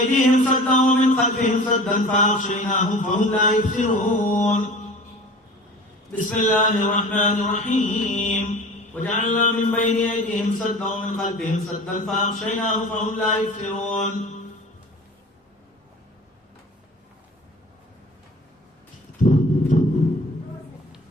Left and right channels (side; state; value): both; normal; correlation 0.41